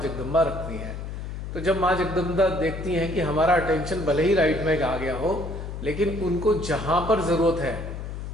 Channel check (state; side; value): noise; left; hum, 7 dB below the sound